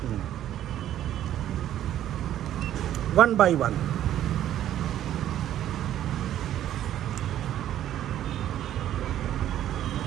वन बाई वन।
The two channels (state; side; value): quieter; left; 11.8 dB